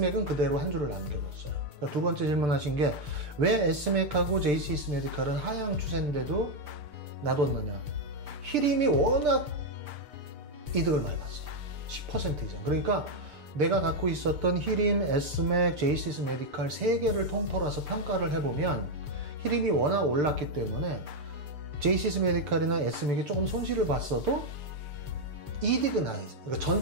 그대로 한 주를 남겨뒀어요. 그러니까 두 번째 질문하신 게 왜 S맥하고 JCS 메디칼은 하향 추세인데도 놔뒀느냐. 히림이 워낙 이득을 많이 봤어요. 10% 이상. 그러니까 내가 갖고 있었던 히림, S맥, JCS 메디칼 3개를 통틀어서 평가를 해보면 히림이 워낙 올랐기 때문에 JCS 메디칼이나 S맥이 조금 손실을 봤어도 이득은 아니지. 그러니까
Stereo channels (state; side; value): late; left; 6.8 ms